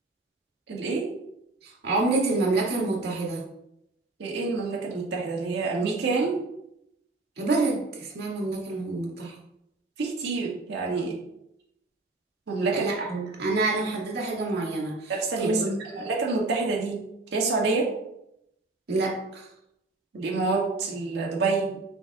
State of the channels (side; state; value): left; quieter; 3.1 dB